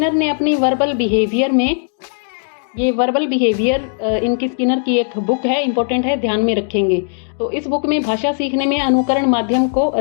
ने अपनी वर्बल बिहेवियर में, ये वर्बल बिहेवियर इनकी स्किनर की एक बुक है, इंपॉर्टेंट है, ध्यान में रखेंगे। तो इस बुक में भाषा सीखने में अनुकरण माध्यम को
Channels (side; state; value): right; silent; digital silence